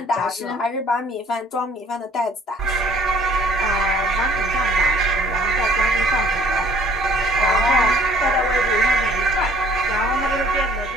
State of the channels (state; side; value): normal; both; correlation 0.56